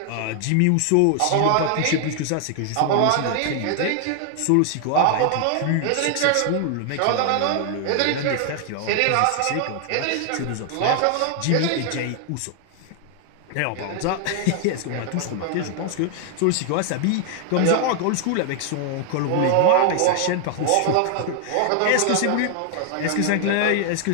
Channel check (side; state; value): both; different; correlation 0.00